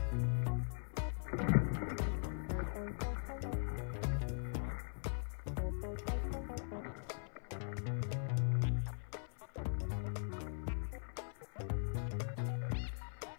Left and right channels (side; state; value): right; silent; 50 dB below the other